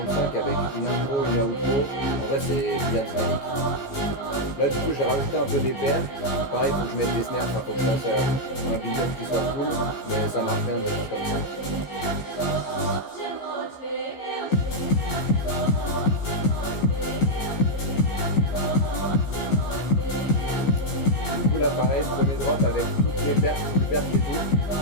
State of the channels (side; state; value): right; late; 14 ms